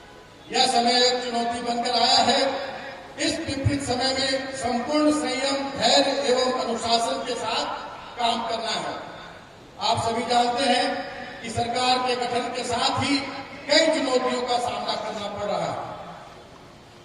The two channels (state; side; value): identical; both; correlation 1.00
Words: यह समय एक चुनौती बनकर आया है। इस विपरीत समय में संपूर्ण संयम, धैर्य एवं अनुशासन के साथ काम करना है। आप सभी जानते हैं कि सरकार के गठन के साथ ही कई चुनौतियों का सामना करना पड़ रहा है।